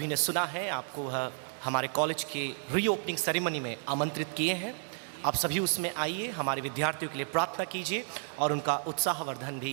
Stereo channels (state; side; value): silent; left; 57 dB below the other